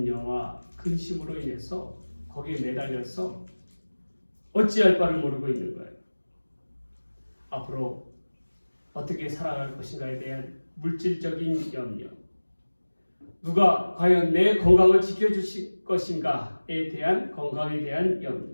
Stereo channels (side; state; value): both; inverted; correlation -1.00